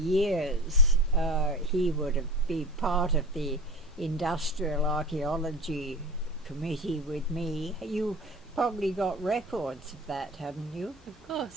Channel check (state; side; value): normal; both; correlation 0.33